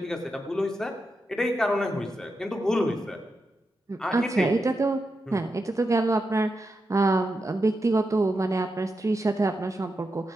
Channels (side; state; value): both; normal; correlation 0.87